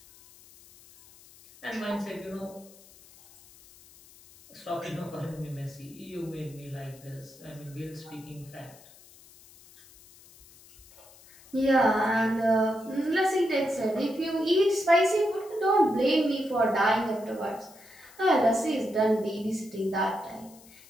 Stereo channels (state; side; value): noise; left; hiss, 24 dB below the sound